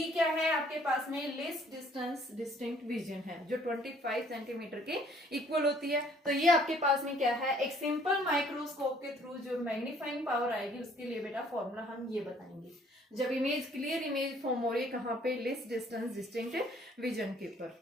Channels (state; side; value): normal; both; correlation 0.60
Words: क्या है आपके पास में, लेस डिस्टेंस डिस्टिंक्ट विजन है, जो 25 सेंटीमीटर के इक्वल होती है। तो ये आपके पास में क्या है, एक सिंपल माइक्रोस्कोप के थ्रू जो मैग्नीफाइंग पावर आएगी उसके लिए बेटा फॉर्मूला हम ये बताएंगे, जब इमेज क्लियर इमेज फॉर्म हो रही है कहाँ पे, लेस डिस्टेंस डिस्टिंक्ट विजन के